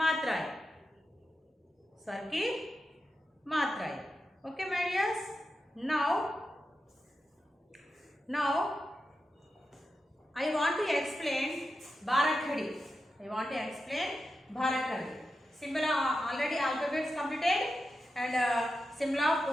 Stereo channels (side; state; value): both; normal; correlation 0.90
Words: स्वर की मात्राएं. Okay, my dears. Now I want to explain Bharakhadi. I want to explain Bharakhadi. Symbol already alphabets completed and symbol of